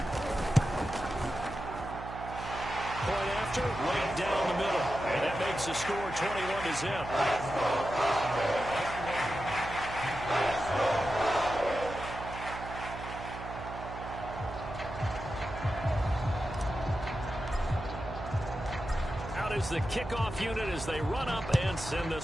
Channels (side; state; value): right; noise; hum, 10 dB below the sound